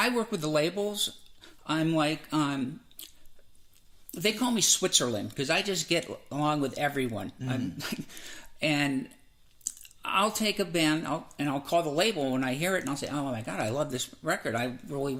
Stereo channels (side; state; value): both; identical; correlation 1.00